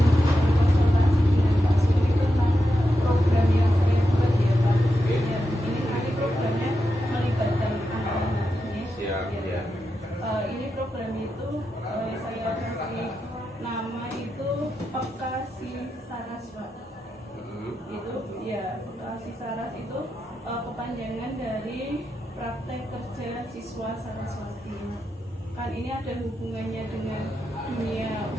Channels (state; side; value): normal; both; correlation 0.87